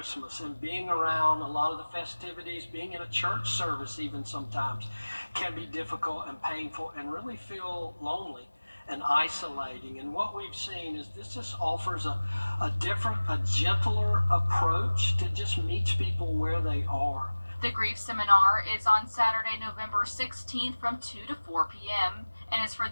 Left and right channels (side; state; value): both; inverted; correlation -1.00